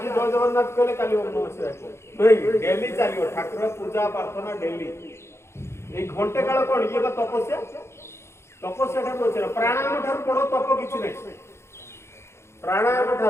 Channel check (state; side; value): late; right; 0.13 ms